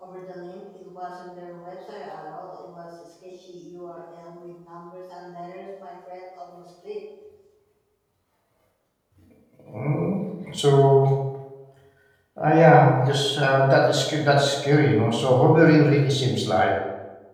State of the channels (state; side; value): identical; both; correlation 1.00